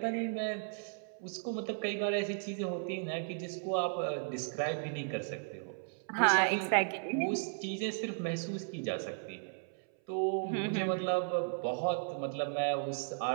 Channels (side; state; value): left; silent; 54 dB below the other